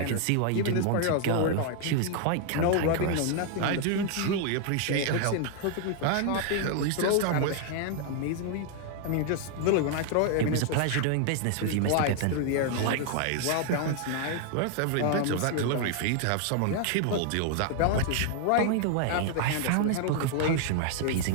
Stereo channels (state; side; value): different; both; correlation 0.00